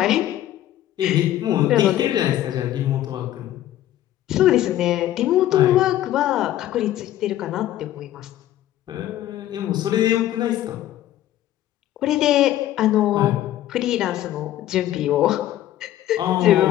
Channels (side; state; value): right; quieter; 13.2 dB